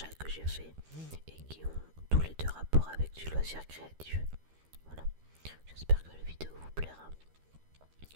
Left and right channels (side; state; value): left; late; 13 ms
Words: que j'ai faits et qui ont tous les deux rapport avec du loisir créatif. Voilà, j'espère que la vidéo vous plaira.